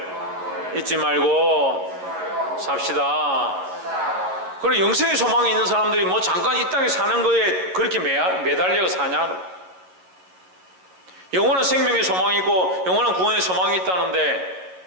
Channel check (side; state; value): left; late; 11 ms